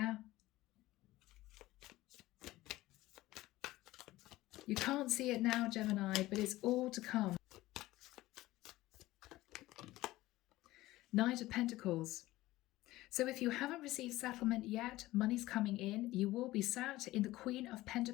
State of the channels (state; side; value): quieter; right; 17.4 dB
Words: You can't see it now, Gemini, but it's all to come. Knight of Pentacles. So if you haven't received settlement yet, money's coming in. You will be sat in the Queen of